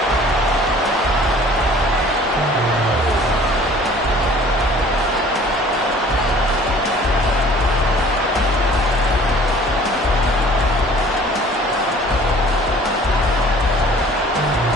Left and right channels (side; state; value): both; normal; correlation 0.51